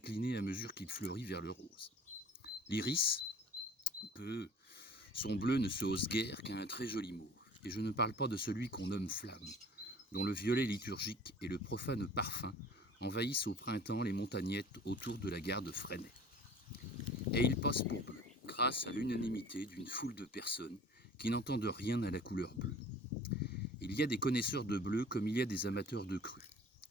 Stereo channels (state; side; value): normal; both; correlation 0.45